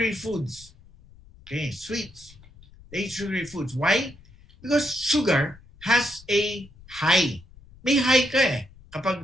foods. Okay, sweets. They eat sugary foods. Why? Because sugar has a high. May high ka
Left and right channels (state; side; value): noise; left; rumble, 23 dB below the sound